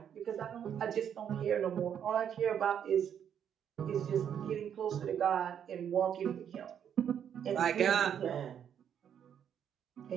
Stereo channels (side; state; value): left; quieter; 8.8 dB